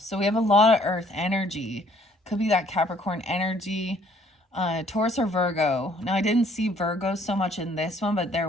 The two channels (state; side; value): normal; both; correlation 0.61